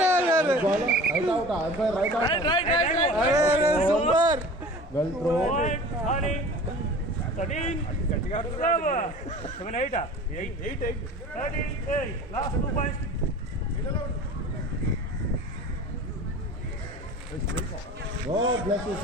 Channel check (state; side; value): normal; both; correlation 0.40